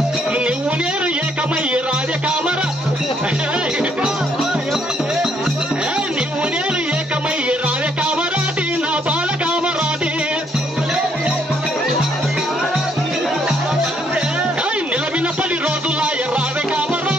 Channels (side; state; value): both; normal; correlation 0.70